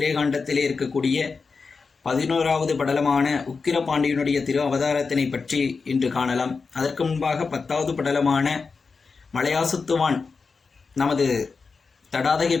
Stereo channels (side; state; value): right; quieter; 4.7 dB